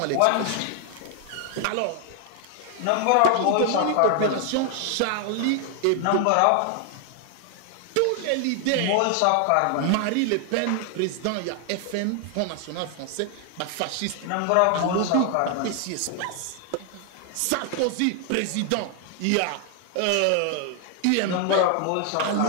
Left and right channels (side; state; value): both; different; correlation 0.00